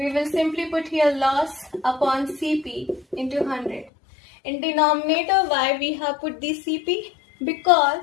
will simply put here loss upon CP into 100. In denominator, why we have put the CP? Because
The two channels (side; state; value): right; drops out; at 3.9 s